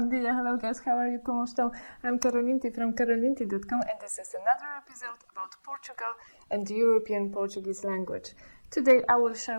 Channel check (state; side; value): inverted; both; correlation -1.00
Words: dia, hello guys, how are you? ¿Cómo están? I'm Karolinti from karolinti.com and this is another episode about Portugal and the European Portuguese language. Today I will share